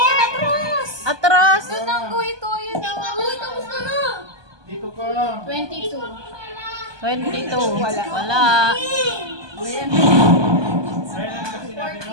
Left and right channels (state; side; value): late; left; 1.2 ms